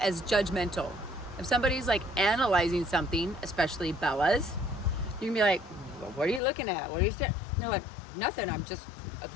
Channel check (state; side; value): drops out; right; at 6.4 s